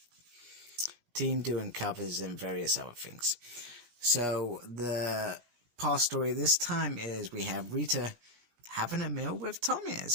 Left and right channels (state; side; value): late; left; 17 ms